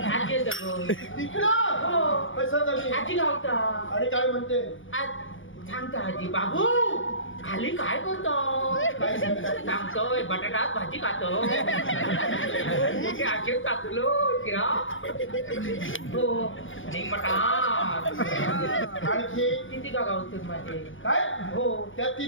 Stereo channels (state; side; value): late; right; 0.57 ms